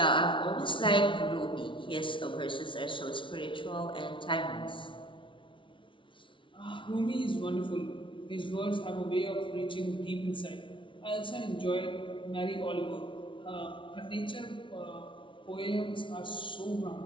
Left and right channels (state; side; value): late; right; 0.25 ms